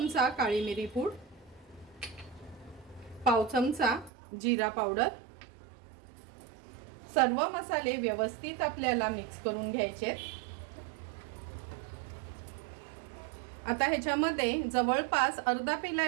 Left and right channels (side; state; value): left; drops out; at 4.1 s